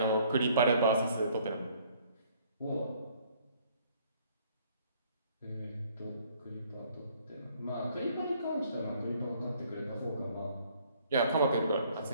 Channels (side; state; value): both; inverted; correlation -0.60